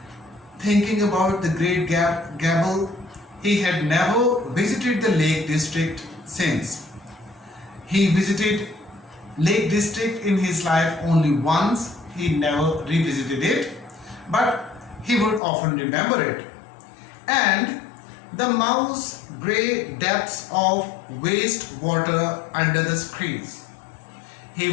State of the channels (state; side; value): drops out; right; at 15.4 s